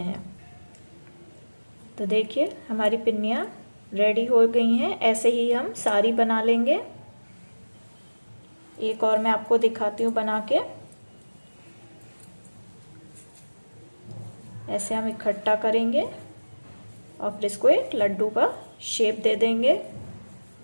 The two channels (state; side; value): inverted; both; correlation -1.00